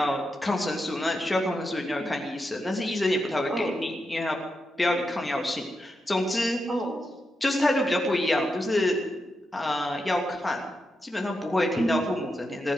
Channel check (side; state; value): both; normal; correlation 0.86